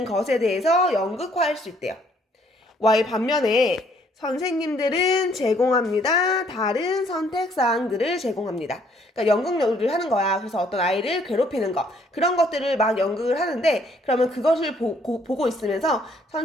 것에 대해서 연극화할 수 있대요. 반면에 선생님들은 제공합니다. 다른 선택사항들을 제공합니다. 그러니까 연극을 하는 거야. 그래서 어떤 아이를 괴롭히는 거, 그런 것들을 막 연극을 하는데, 그러면 그것을 보고 있으면서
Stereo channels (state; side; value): normal; both; correlation 0.65